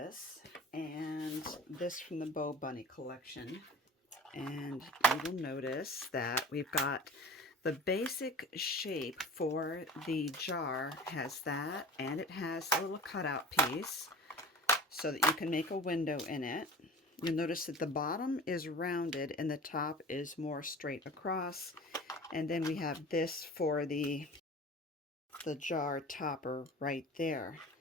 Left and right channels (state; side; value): normal; both; correlation 0.39